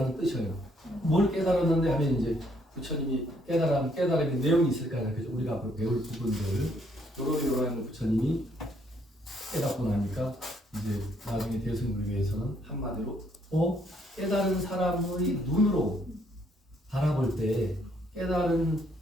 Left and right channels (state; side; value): normal; both; correlation 0.69